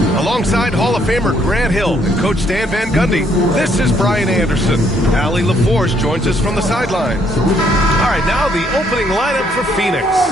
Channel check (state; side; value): normal; both; correlation 0.69